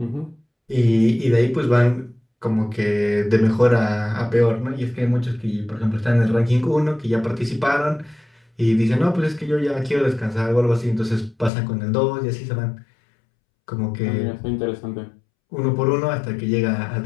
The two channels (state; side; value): drops out; right; at 11.5 s